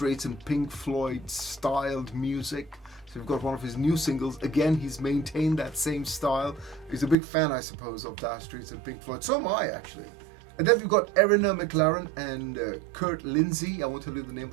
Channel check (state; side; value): drops out; left; at 7.2 s